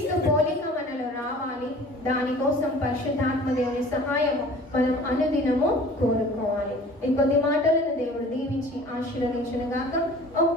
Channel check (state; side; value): normal; both; correlation 0.46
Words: పోలిక మనలో రావాలి. దానికోసం పరిశుద్ధాత్మ దేవుని సహాయము మనం అనుదినము కోరుకోవాలి. ఈ కొద్ది మాటలను దేవుడు దీవించి ఆశీర్వదించును గాక.